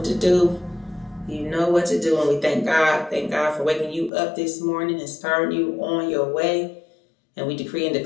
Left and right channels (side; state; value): right; drops out; at 4.1 s